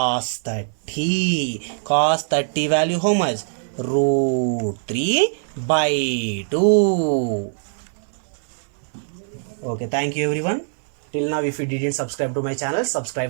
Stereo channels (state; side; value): silent; left; digital silence